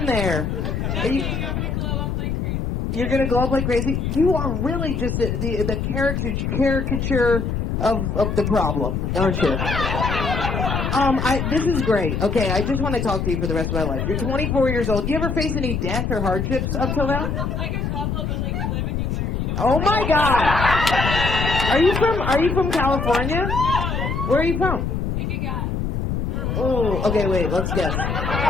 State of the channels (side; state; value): left; noise; rumble, 1 dB below the sound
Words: there? I'm going to glow up like crazy. You're going to glow up like crazy? You are really just the caricature of the problem, aren't you? This is great. Okay, I just want to talk to you for the rest of my life. You're 24 years old. Do you ever face any death or hardships up till now? Like a couple, but like you live and you learn. You know? Oh my God! Are you from California? No. Where are you from? Take a guess. Oh, okay, wait, let's guess.